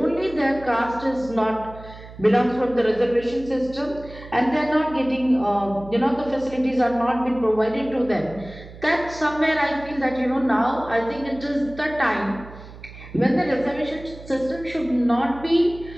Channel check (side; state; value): right; noise; hum, 17 dB below the sound